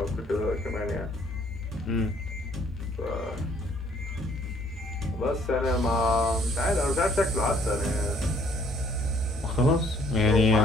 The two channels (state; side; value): normal; both; correlation 0.62